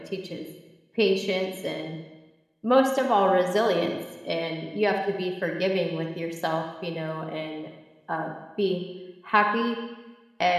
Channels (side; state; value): both; identical; correlation 1.00